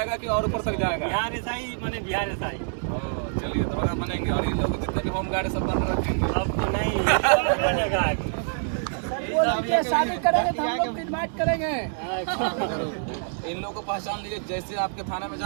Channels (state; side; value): silent; left; digital silence